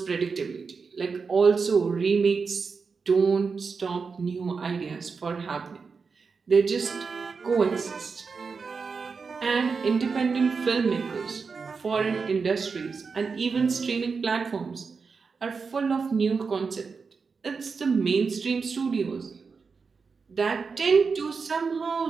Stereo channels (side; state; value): left; quieter; 5.1 dB